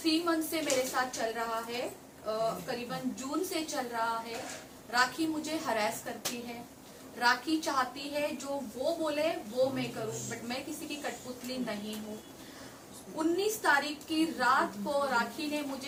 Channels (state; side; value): identical; both; correlation 1.00